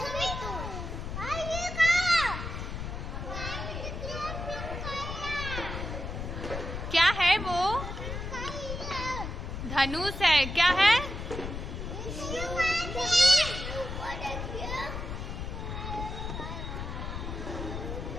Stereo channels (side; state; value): left; noise; rumble, 6 dB below the sound